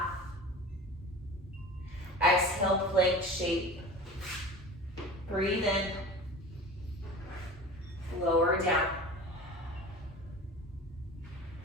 Exhale, plank shape. Breathe in. Lower down.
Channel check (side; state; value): both; normal; correlation 0.36